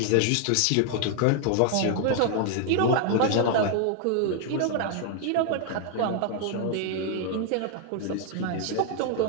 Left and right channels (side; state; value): both; different; correlation 0.00